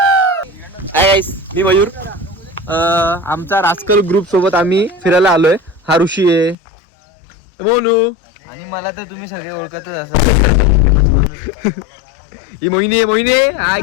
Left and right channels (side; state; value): right; drops out; at 6.6 s